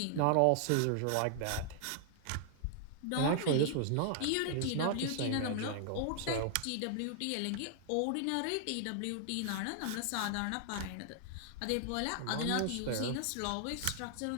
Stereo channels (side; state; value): both; different; correlation 0.00